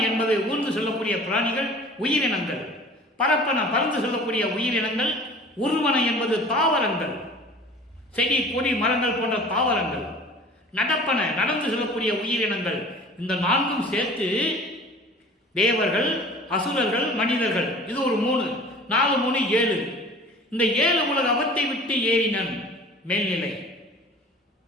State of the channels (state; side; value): normal; both; correlation 0.44